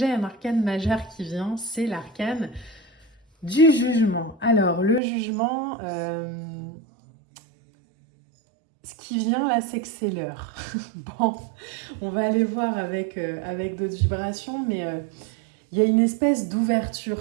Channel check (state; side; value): drops out; left; at 5.0 s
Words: un arcane majeur qui vient, c'est l'arcane du jugement. Alors, le jugement, ce qui vient là, c'est que c'est l'heure. Bon, on va aller voir avec d'autres vibrations, mais il y a une espèce